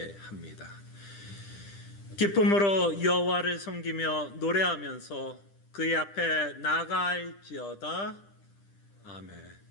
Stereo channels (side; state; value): right; late; 10 ms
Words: 기쁨으로 여호와를 섬기며 노래하면서 그의 앞에 나아갈지어다. 아멘.